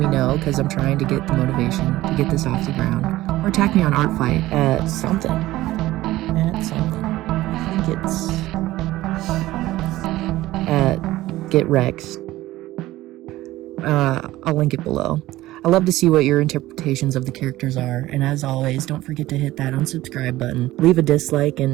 know, because I'm trying to get the motivation to get this off the ground. Or attack me on Artfight at something. I think it's at Get Rex. I'll link it below. I love to see what your interpretations of the characters are, and as always, don't forget to hit that unsubscribe button, leave a dislike,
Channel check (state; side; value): quieter; left; 16.5 dB